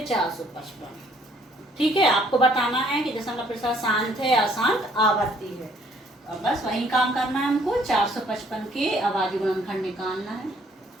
455। ठीक है, आपको बताना है कि दशमलव प्रसार शांत है, अशांत, आवर्ती है। और बस वही काम करना है हमको। 455 के अभाज्य गुणनखंड निकालना है।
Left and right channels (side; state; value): both; normal; correlation 0.62